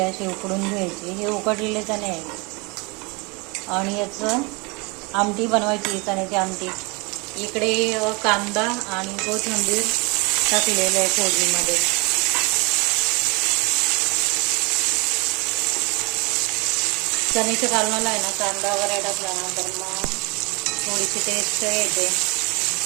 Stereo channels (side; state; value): left; quieter; 28.8 dB